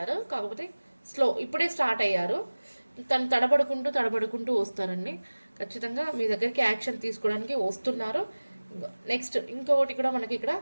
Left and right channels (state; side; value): inverted; both; correlation -1.00